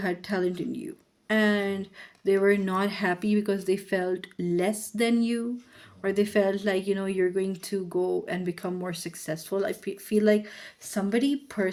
talent in you, and they were not happy because they felt less than you, or they felt like, you're going to go and become more successful. I feel like somebody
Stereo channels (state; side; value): identical; both; correlation 1.00